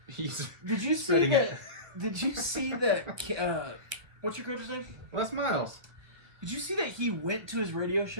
He's Did you see spreading that? it. Did you see that? What's your coach's name? Les Miles. Did you see that he went to his radio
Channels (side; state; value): left; late; 1.4 ms